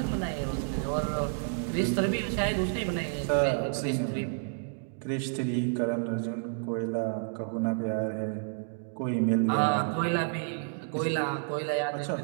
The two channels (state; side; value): silent; left; digital silence